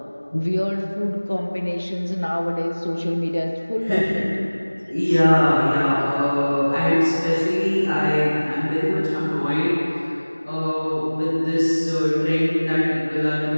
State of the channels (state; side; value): inverted; both; correlation -1.00